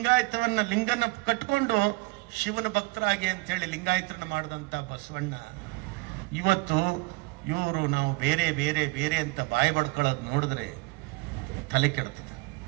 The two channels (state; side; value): quieter; left; 26.0 dB